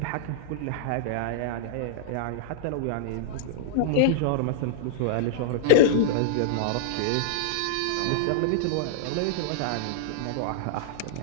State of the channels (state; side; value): different; both; correlation -0.01